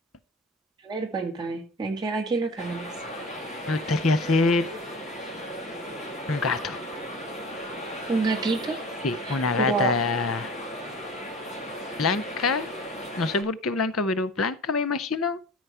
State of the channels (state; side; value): normal; both; correlation 0.38